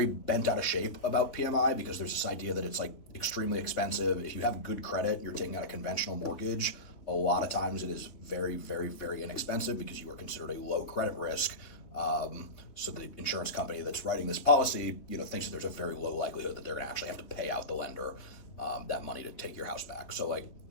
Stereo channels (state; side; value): late; right; 3.6 ms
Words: bent out of shape about PMI because there's this idea that it's like extremely expensive. If you have good credit, you're taking out a conventional mortgage. A lot of times it is very, very, very inexpensive because you are considered a low credit risk. So the insurance company that's writing this policy, thinks that there's a very low likelihood that they're going to actually have to pay out the lender that money to take your house back. So like